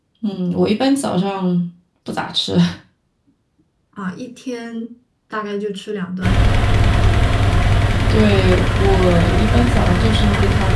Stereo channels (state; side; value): identical; both; correlation 1.00